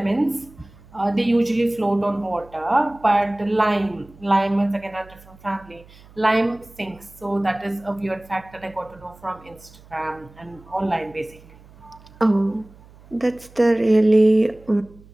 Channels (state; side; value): noise; right; hum, 24 dB below the sound